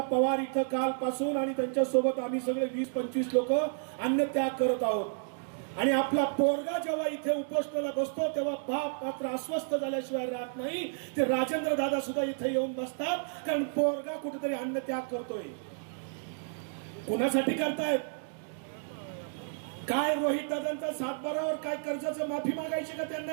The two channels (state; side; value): silent; left; digital silence